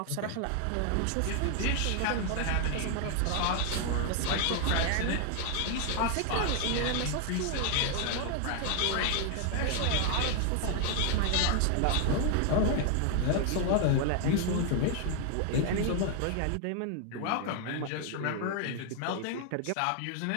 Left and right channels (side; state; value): both; different; correlation 0.00